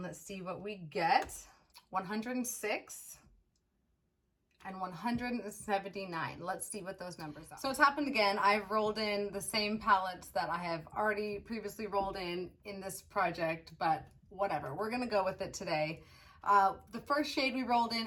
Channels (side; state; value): both; identical; correlation 1.00